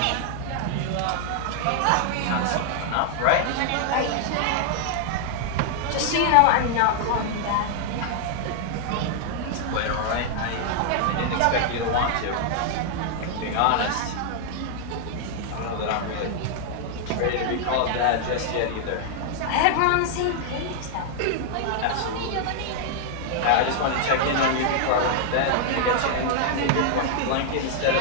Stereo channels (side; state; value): both; different; correlation 0.00